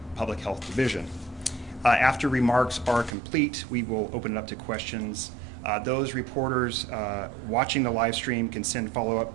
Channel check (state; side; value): drops out; left; at 3.1 s